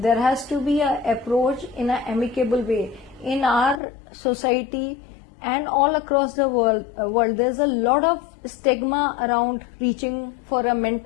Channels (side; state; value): right; drops out; at 3.8 s